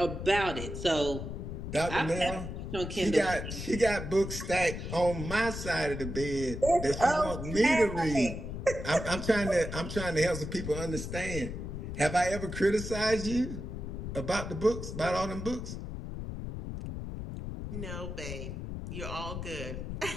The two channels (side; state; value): left; noise; rumble, 6 dB below the sound